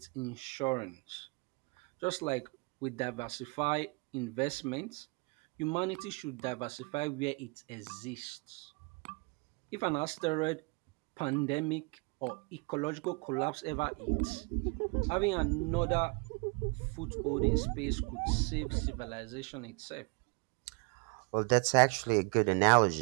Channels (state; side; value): quieter; left; 31.1 dB